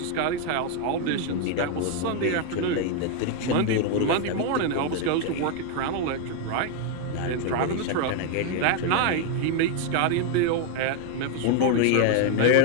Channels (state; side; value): different; both; correlation 0.01